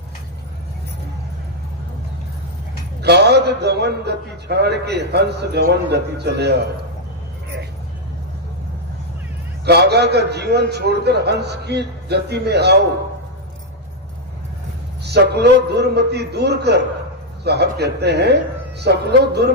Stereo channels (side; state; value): both; normal; correlation -0.02